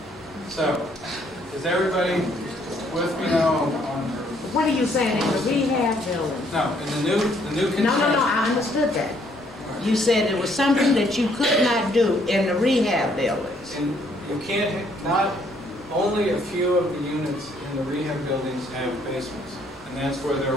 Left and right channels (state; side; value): normal; both; correlation 0.67